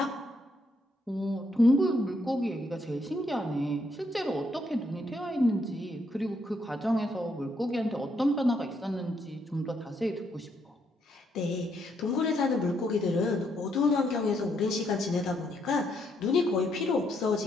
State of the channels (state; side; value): normal; both; correlation 0.75